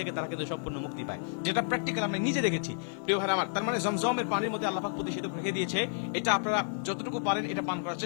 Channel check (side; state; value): right; silent; digital silence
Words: তারা কিন্তু সম্পূর্ণ মুক্তি পায়, যেটা প্র্যাকটিক্যাল আমি নিজে দেখেছি। প্রিয় ভাই আমার, তার মানে জমজমের পানির মধ্যে আল্লাহ পাক প্রতিষেধক রেখে দিয়েছে। এটা আপনারা যতটুকু পারেন এটা পান করার